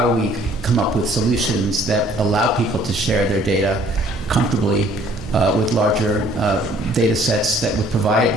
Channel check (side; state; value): both; normal; correlation 0.58